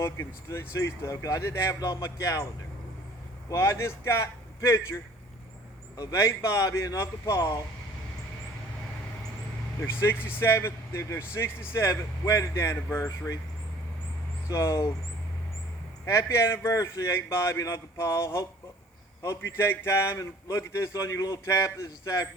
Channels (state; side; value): normal; both; correlation 0.52